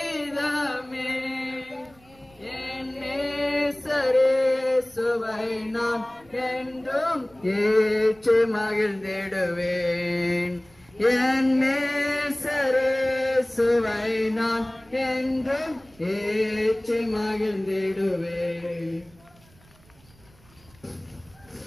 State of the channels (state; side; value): noise; right; rumble, 28 dB below the sound